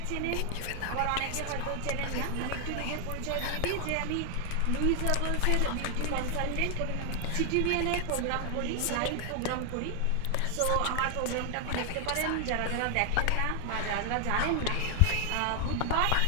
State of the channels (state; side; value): different; both; correlation 0.00